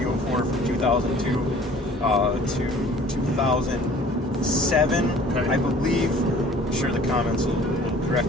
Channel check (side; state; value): both; normal; correlation 0.50